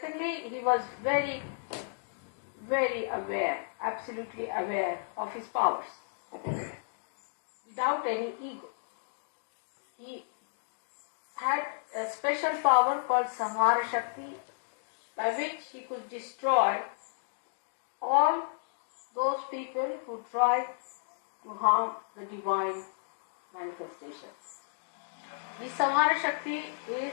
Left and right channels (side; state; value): right; silent; digital silence